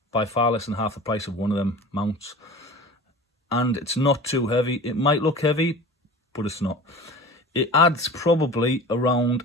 by far less than half the price of one of them mounts. And it's not too heavy. It might look heavy, but it's not. It adds probably around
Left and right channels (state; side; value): normal; both; correlation 0.38